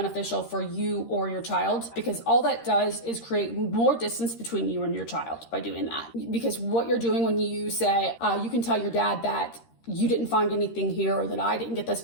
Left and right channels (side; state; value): right; late; 13 ms